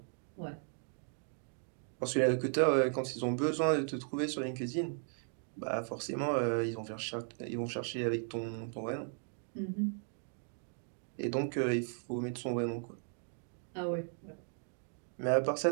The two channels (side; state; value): left; silent; 53 dB below the other